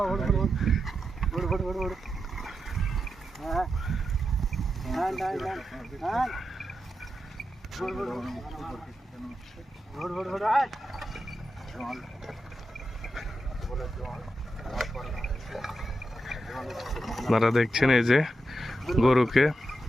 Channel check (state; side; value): normal; both; correlation 0.87